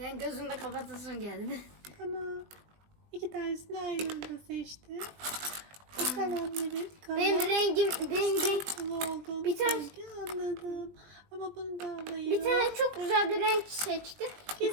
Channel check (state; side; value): late; left; 20 ms